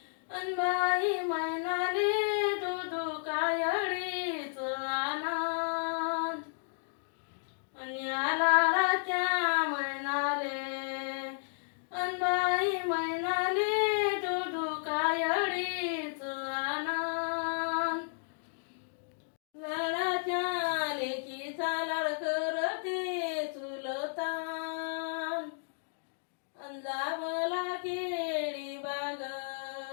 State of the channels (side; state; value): right; silent; digital silence